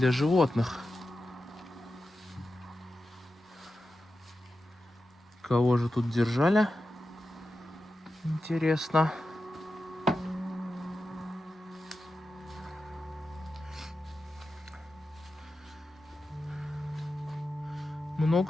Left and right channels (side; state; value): both; normal; correlation 0.91